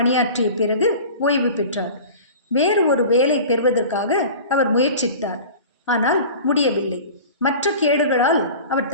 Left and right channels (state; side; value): inverted; both; correlation -0.38